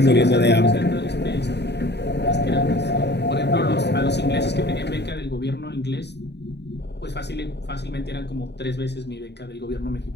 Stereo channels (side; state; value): right; late; 0.49 ms